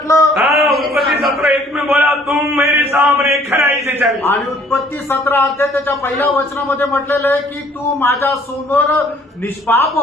उत्पत्ति 17:1 में बोला, तुम मेरे सामने खराई से चल। आणि उत्पत्ती 17 अध्याय त्याच्या पहिल्या वचनामध्ये म्हटलेलं आहे की तू माझ्या समोर निष्पाप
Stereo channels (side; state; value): both; normal; correlation 0.58